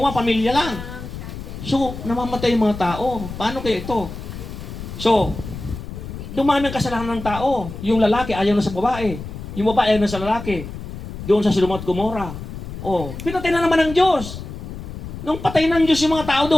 pamilya lang. So, namamatay yung mga tao. Paano kaya ito? So, Dumami ang kasalanan ng tao. Yung lalaki ayaw na sa babae. Yung babae ayaw na sa lalaki. Doon sa Sodoma at Gomora. Oh, pinatay na naman ng Diyos. Nung patay ng Diyos yung mga tao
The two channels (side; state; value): left; noise; rumble, 10 dB below the sound